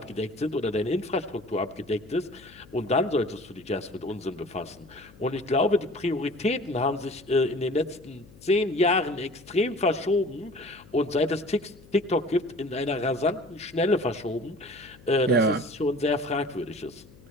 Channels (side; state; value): left; noise; hum, 23 dB below the sound